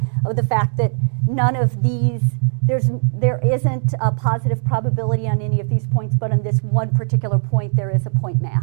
of the fact that none of these, there isn't a positive probability on any of these points, but on this one particular point, there is a point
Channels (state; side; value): silent; left; digital silence